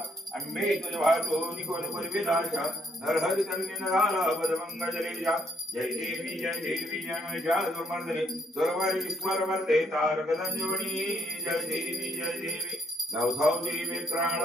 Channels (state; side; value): normal; both; correlation 0.71